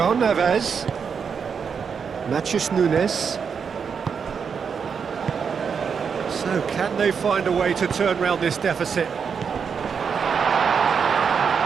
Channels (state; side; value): quieter; left; 6.4 dB